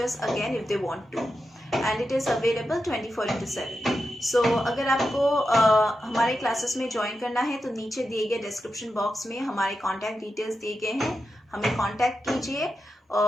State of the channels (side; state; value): both; normal; correlation 0.89